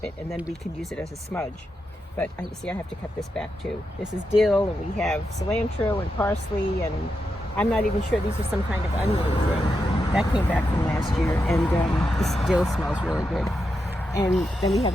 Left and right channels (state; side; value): normal; both; correlation 0.86